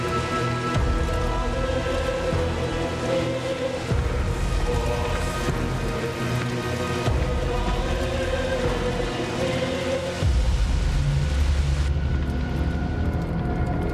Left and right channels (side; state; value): both; identical; correlation 1.00